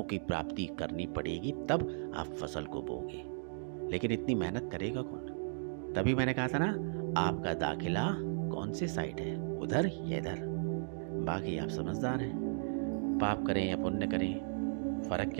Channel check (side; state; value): left; silent; digital silence